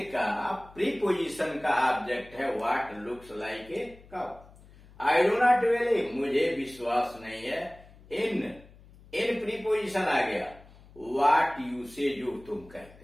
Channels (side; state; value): left; noise; hum, 23 dB below the sound